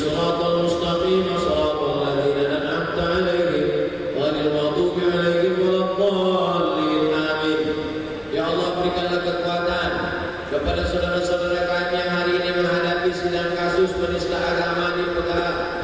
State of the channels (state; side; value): identical; both; correlation 1.00